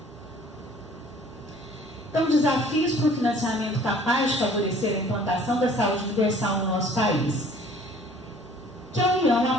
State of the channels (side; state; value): both; normal; correlation 0.53